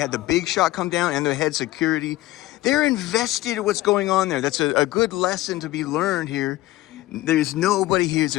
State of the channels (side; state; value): right; quieter; 17.0 dB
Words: the big shot come down and the head security. They're invested in what's going on there. That's a good lesson to be learned here. There's nobody here who's